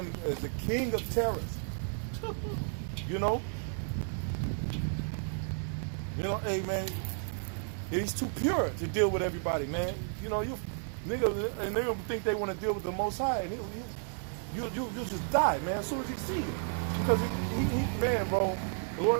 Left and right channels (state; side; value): silent; left; 56 dB below the other